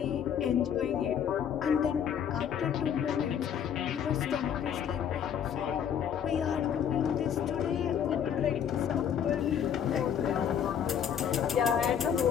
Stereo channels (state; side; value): quieter; right; 8.5 dB